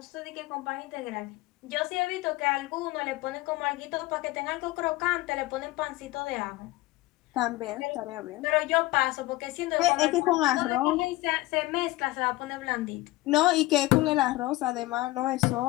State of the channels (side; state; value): right; quieter; 19.3 dB